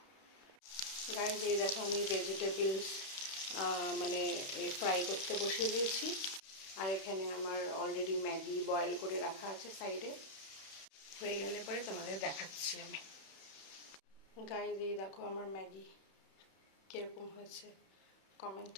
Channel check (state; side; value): late; right; 31 ms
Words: গাইজ, এই দেখো আমি ভেজিটেবলস মানে ফ্রাই করতে বসিয়ে দিয়েছি। আর এখানে আমার অলরেডি ম্যাগি বয়েল করে রাখা আছে সাইডে। হয়ে গেলে পরে তোমাদের দেখাচ্ছি আমি। গাইজ, এই দেখো আমার ম্যাগি কীরকম হয়েছে কমেন্ট